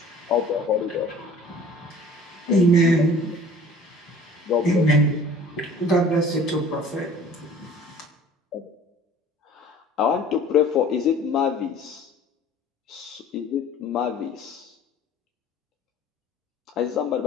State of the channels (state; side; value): normal; both; correlation 0.48